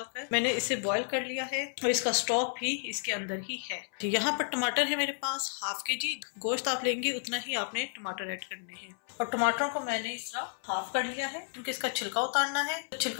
मैंने इसे बॉईल कर लिया है और इसका स्टॉक भी इसके अंदर ही है। यहाँ पर टमाटर है मेरे पास हाफ के जी। गोश्त आप लेंगे उतना ही आपने टमाटर ऐड करने हैं और टमाटरों को मैंने इस तरह हाफ कर लिया है क्योंकि इसका छिलका उतारना है, तो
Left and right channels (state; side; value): silent; right; 57 dB below the other